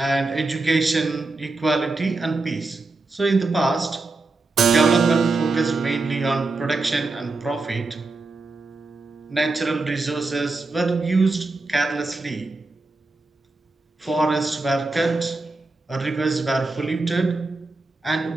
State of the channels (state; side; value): quieter; left; 3.4 dB